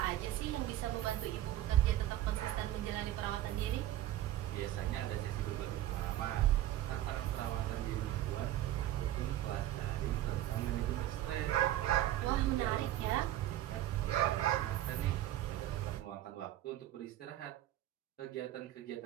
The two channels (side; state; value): left; quieter; 13.7 dB